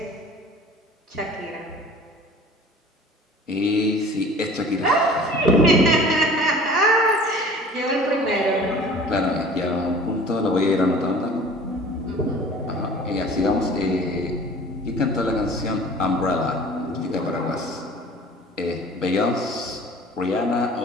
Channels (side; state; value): both; normal; correlation 0.45